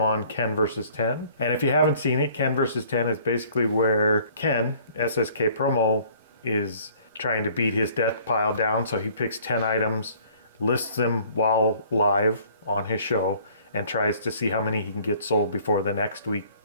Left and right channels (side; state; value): both; inverted; correlation -0.56